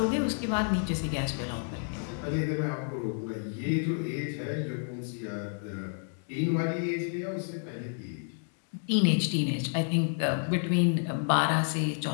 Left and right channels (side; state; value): right; silent; 58 dB below the other